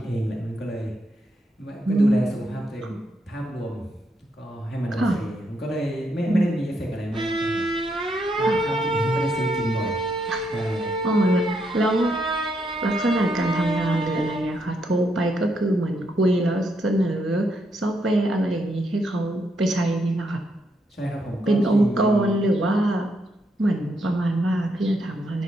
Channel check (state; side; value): normal; both; correlation 0.78